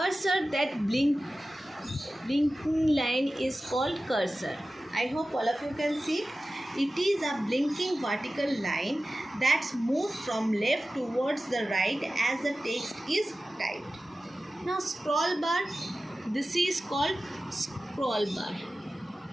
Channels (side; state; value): both; normal; correlation 0.95